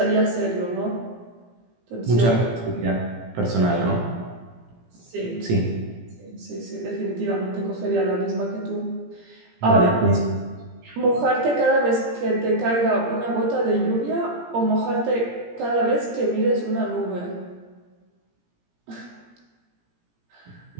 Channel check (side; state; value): left; late; 17 ms